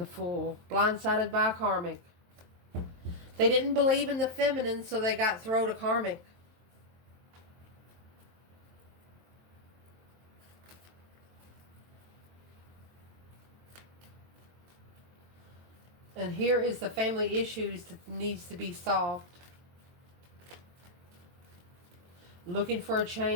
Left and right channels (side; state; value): left; late; 23 ms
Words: Fool. Blindsided by karmic. They didn't believe in the feminine, so they got thrown to karmic. And here is the family issues that needs to be solved. Looking for a